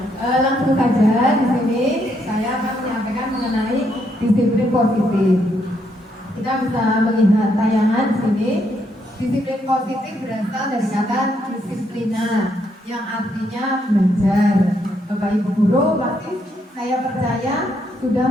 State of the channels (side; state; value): both; normal; correlation 0.75